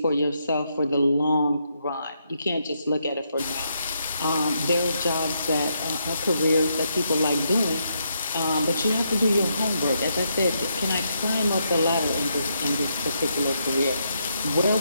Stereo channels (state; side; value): inverted; both; correlation -0.78